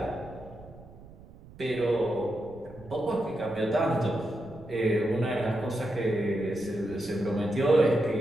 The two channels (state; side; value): noise; right; rumble, 20 dB below the sound